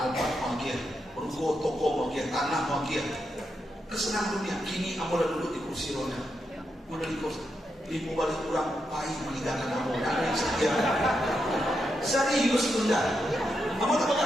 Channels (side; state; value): both; normal; correlation 0.84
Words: mau kian, ruko toko mau kian, tanah mau kian. Kesenangan dunia. Kini ambo udah duduk di kursi roda. Udah di kursi. Ibu balik kurang pahit meninggalkan ambo. Ada yang setia. Serius bunda. Ambo tak